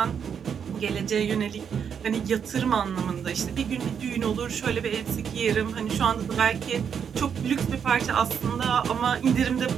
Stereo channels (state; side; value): quieter; left; 7.4 dB